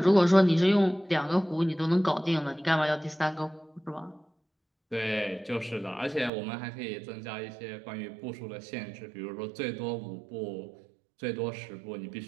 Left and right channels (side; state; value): left; drops out; at 6.3 s